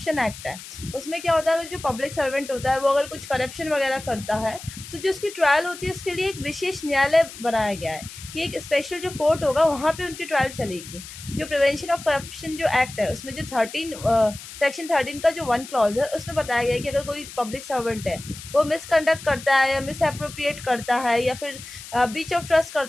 एक्ट है, उसमें क्या होता है, जो पब्लिक सर्वेंट होता है वो अगर कुछ करप्शन वगैरह करता है तो जो उसकी ट्रायल होती है उसके लिए एक विशेष न्यायालय बनाया गया है कि एक स्पेशल जो कोर्ट होगा वहाँ पे उनकी ट्रायल चलेगी। जो प्रिवेंशन ऑफ करप्शन जो एक्ट है उसमें जो सेक्शन 13 का जो 1 क्लॉज है उसमें बताया गया है कि अगर कोई पब्लिक सर्वेंट है वो मिसकंडक्ट करता है या मिस अप्रोप्रिएट करता है या फिर ब्रीच ऑफ ट्रस्ट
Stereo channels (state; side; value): noise; left; hiss, 14 dB below the sound